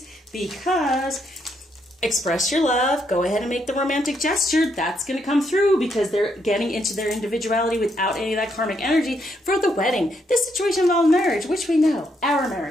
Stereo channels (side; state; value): both; normal; correlation 0.76